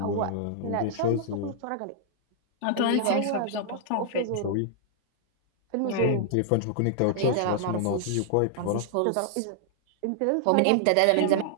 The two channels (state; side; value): different; both; correlation -0.01